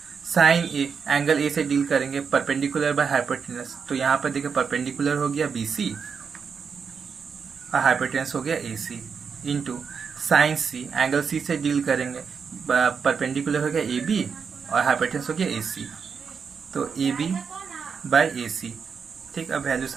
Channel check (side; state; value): left; quieter; 6.1 dB